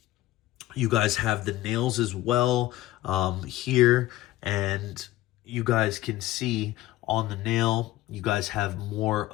guys have the nails as well here, and you guys can see on the nail you guys have more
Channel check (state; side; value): quieter; right; 16.1 dB